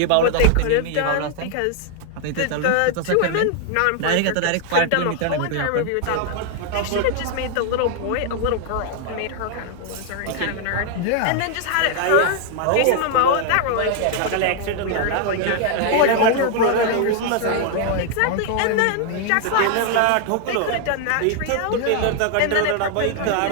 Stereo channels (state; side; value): different; both; correlation 0.00